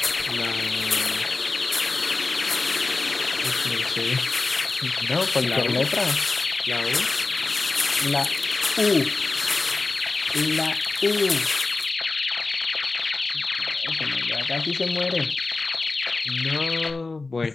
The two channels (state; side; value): quieter; right; 3.6 dB